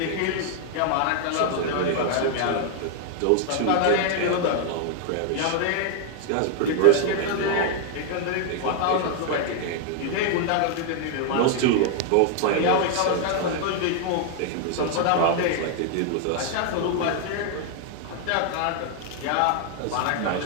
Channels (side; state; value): both; different; correlation 0.00